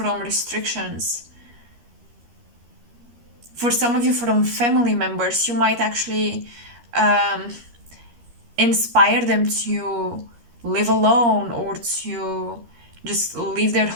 restrictions. For some of you, from family members, you might actually inspire them to live alone or to just leave their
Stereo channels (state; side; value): late; left; 13 ms